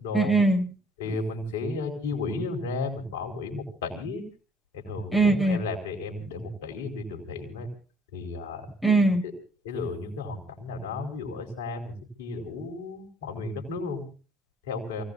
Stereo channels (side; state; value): both; normal; correlation 0.62